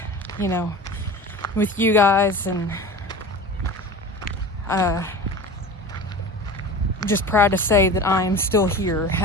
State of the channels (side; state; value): both; normal; correlation 0.34